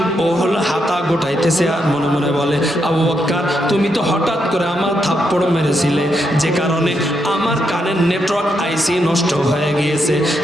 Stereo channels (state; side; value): normal; both; correlation 0.81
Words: ও হলো হাতা গোটাইতেছে আর মনে মনে বলে, আবু বকর তুমি তো হঠাৎ করে আমার থাপ্পড় মেরেছিলে, যে কারণে আমার কানের নেটওয়ার্ক আইসি নষ্ট হয়ে গিয়েছে,